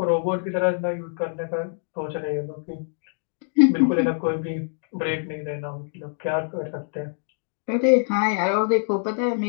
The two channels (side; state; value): right; silent; digital silence